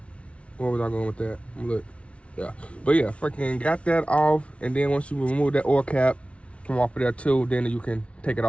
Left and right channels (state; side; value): late; right; 0.062 ms